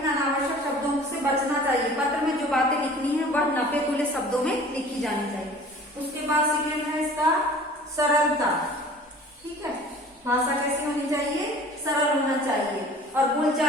अनावश्यक शब्दों से बचना चाहिए। पत्र में जो बातें लिखनी है वह नपे तुले शब्दों में लिखी जानी चाहिए। उसके बाद सेकेंड है इसका सरलता, ठीक है। भाषा कैसी होनी चाहिए, सरल होना चाहिए और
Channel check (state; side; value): normal; both; correlation 0.46